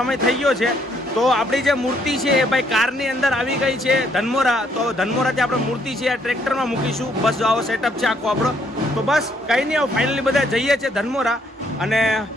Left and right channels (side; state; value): both; normal; correlation 0.69